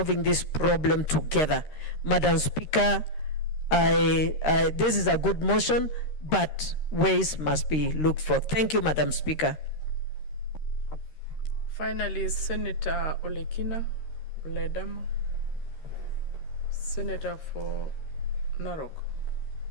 this problem together. Madam Speaker, this is a good motion, but ways must be looked for. Thank you, Madam Speaker. Finally, Senator Olekina Ledama, Senator for Narok.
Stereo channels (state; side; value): late; right; 13 ms